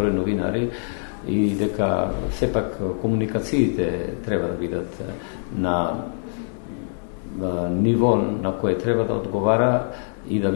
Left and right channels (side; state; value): right; silent; 63 dB below the other